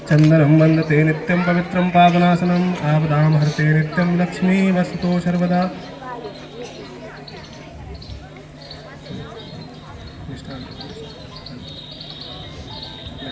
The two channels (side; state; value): both; identical; correlation 1.00